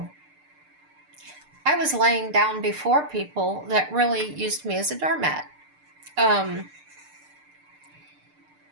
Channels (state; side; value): late; left; 6.7 ms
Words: I was laying down before people that really used me as a doormat. And